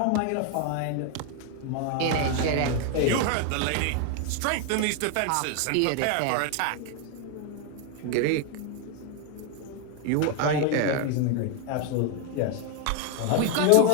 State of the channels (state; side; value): different; both; correlation 0.01